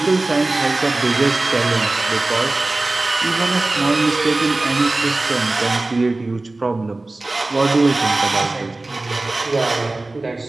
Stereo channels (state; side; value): quieter; left; 3.0 dB